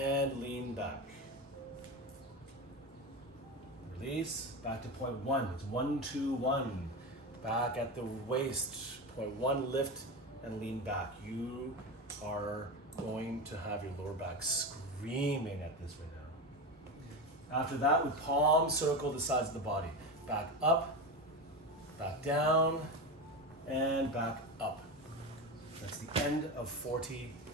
lean back. Release. Back to point 1. It's 1, 2, 1. Back at the waist. Point 1, lift and lean back. You are going to have your lower back screaming at this right now. After that, we palm circle the sides of the body. Back up, back down, and back up. That's the end of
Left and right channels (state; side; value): normal; both; correlation 0.21